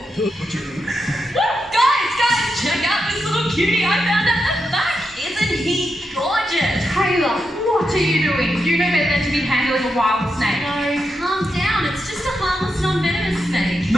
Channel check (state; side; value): normal; both; correlation 0.85